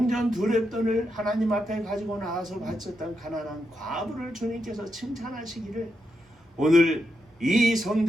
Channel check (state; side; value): normal; both; correlation 0.84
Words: 두 렙돈을 하나님 앞에 가지고 나와서 바쳤던 가난한 과부를 주님께서 칭찬하시기를, 오늘 이